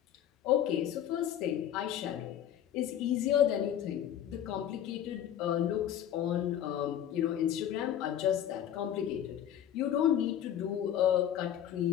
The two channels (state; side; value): quieter; right; 10.5 dB